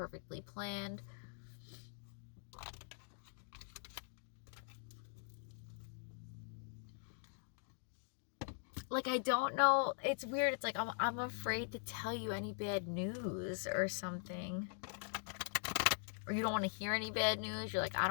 planned. like, I don't know. It's weird. It's like I'm afraid to tell you any bad news or something. Or you don't want to hear any bad news. You're like, I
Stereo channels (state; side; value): silent; right; digital silence